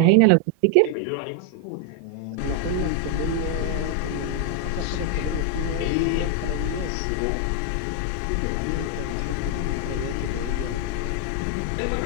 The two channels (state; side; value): different; both; correlation 0.00